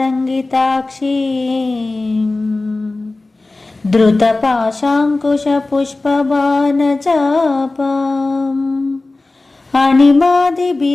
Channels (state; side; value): quieter; right; 3.2 dB